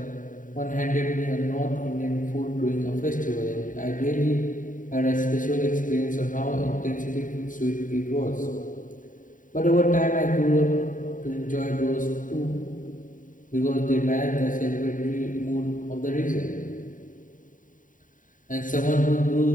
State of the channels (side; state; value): right; late; 0.38 ms